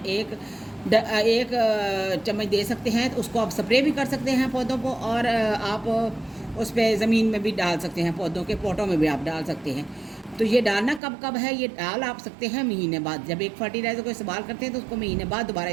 चम्मच दे सकते हैं। तो उसको आप स्प्रे भी कर सकते हैं पौधों को, और आप उस पर ज़मीन में भी डाल सकते हैं, पौधों के पोटों में भी आप डाल सकते हैं। तो ये डालना कब है, ये डाल आप सकते हैं महीने बाद। जब एक फर्टिलाइज़र को इस्तेमाल करते हैं तो उसको महीने बाद दोबारा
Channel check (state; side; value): drops out; left; at 11.0 s